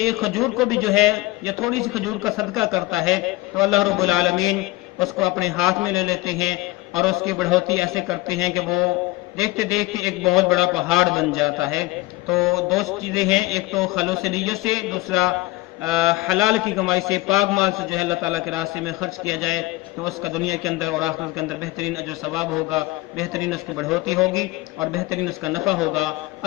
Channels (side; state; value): right; quieter; 20.0 dB